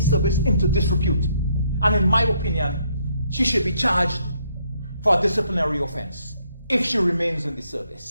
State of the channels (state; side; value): inverted; both; correlation -0.71